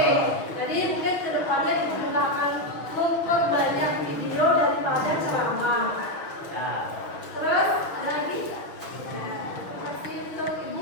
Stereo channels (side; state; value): right; late; 6.2 ms